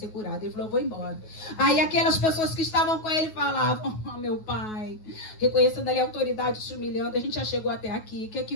curado. Ele falou: vou embora. Aí aquelas pessoas que estavam com ele falavam: oh, meu pai, reconhecendo ali a autoridade, se humilhando, a gente já chegou até aqui, o que é que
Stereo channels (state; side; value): late; right; 9.3 ms